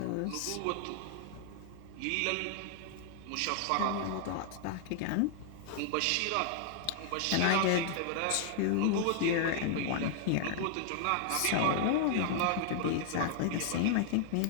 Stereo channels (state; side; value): different; both; correlation 0.00